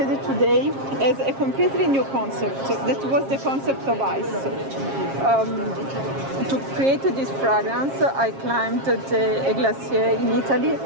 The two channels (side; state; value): left; late; 7.4 ms